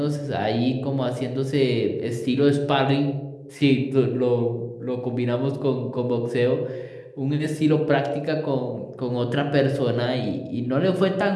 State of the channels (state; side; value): identical; both; correlation 1.00